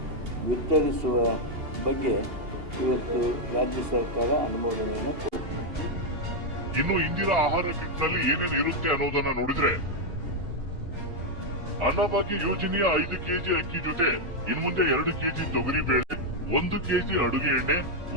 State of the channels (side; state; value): left; late; 2.8 ms